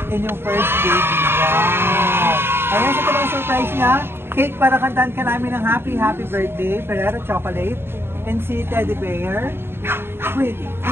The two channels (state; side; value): late; left; 0.11 ms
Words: inyong first baby. Wow! Ayan, sa talagang surprise niya. Cake para kantahan ka namin ng happy birthday, Ferrero Chocolate, and si Teddy Bear. Wait,